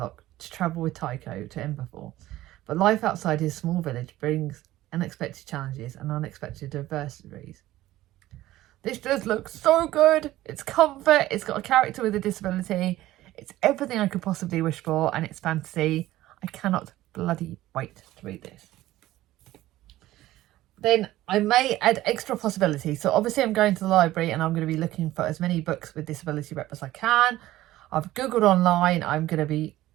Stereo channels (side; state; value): left; quieter; 15.6 dB